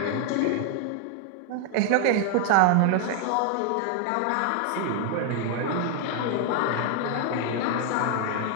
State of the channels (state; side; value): different; both; correlation 0.00